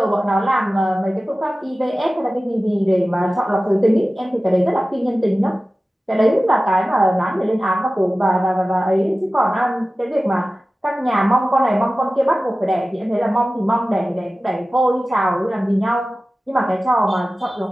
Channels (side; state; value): both; normal; correlation 0.96